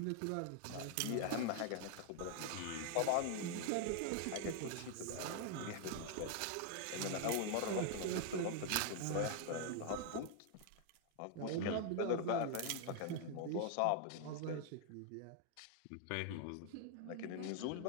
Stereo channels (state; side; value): different; both; correlation 0.00